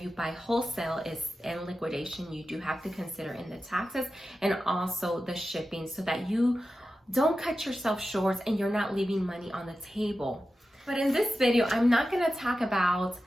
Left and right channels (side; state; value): both; normal; correlation 0.92